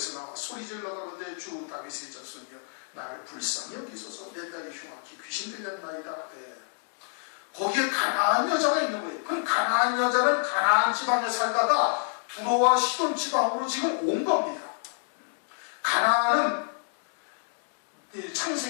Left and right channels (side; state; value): right; silent; 59 dB below the other